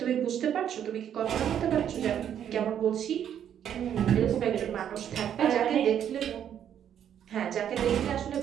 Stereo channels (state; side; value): quieter; left; 9.5 dB